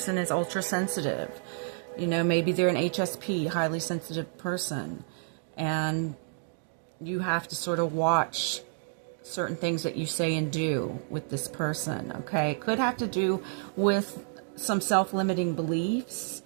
is ultra sensitive. You know, maybe they're an HSP, highly sensitive person. And you have to sort of watch certain things that you say and do with this person, okay? It could have to do with some self-limiting beliefs,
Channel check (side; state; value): left; silent; digital silence